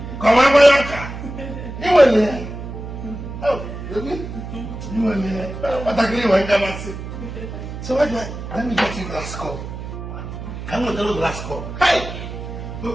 come on, Boyanka. You were there. Oh, really? You were there. What I agree with you. So what do I? Let me get you glass cup. I'm going to do glass cup. Hey!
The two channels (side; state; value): right; noise; hum, 9 dB below the sound